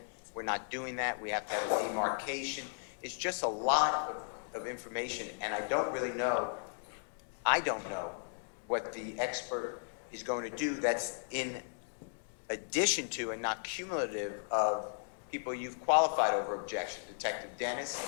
we're not doing that. We have to have a demarcation. It's just a lot of information, and I don't know what the expert is going to do that's in addition to and not cumulative of people you've qualified over objection. Detective Dennis,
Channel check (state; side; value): silent; right; digital silence